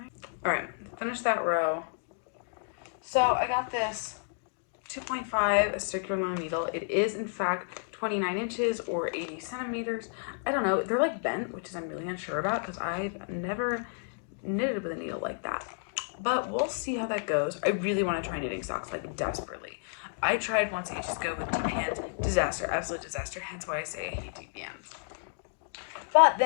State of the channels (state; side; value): silent; right; digital silence